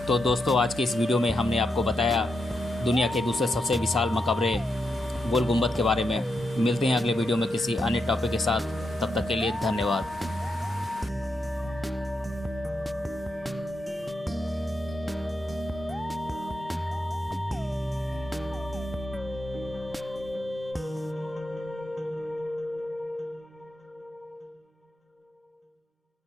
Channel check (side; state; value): both; normal; correlation 0.84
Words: तो दोस्तों, आज के इस वीडियो में हमने आपको बताया दुनिया के दूसरे सबसे विशाल मकबरे गोल गुंबद के बारे में। मिलते हैं अगले वीडियो में किसी अन्य टॉपिक के साथ, तब तक के लिए धन्यवाद।